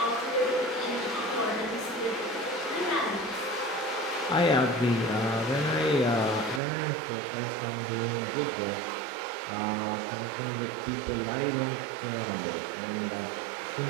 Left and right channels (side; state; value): left; drops out; at 6.6 s